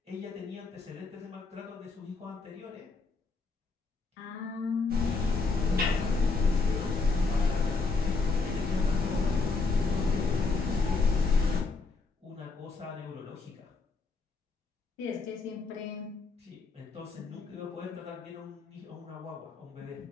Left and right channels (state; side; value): quieter; right; 4.1 dB